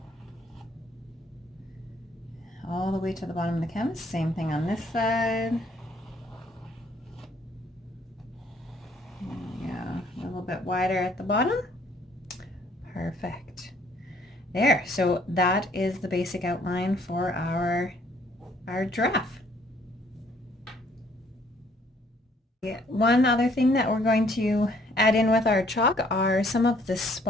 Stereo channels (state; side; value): normal; both; correlation 0.63